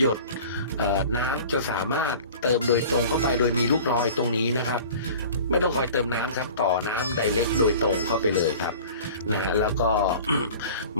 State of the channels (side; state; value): both; inverted; correlation -0.43